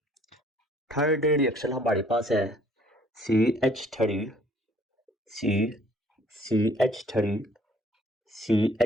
थर्ड रिएक्शन हमारे पास है CH3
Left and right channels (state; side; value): normal; both; correlation 0.59